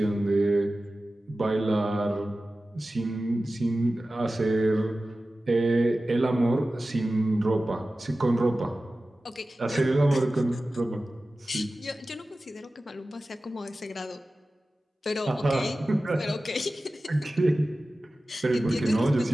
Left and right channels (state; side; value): normal; both; correlation 0.95